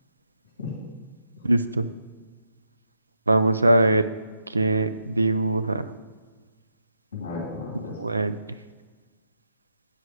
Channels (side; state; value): both; inverted; correlation -0.82